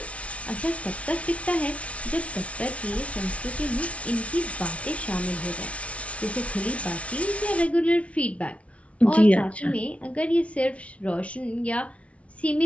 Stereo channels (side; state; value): right; late; 0.063 ms